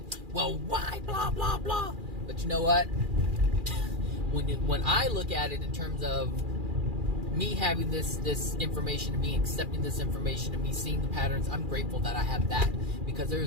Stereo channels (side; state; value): left; late; 2.4 ms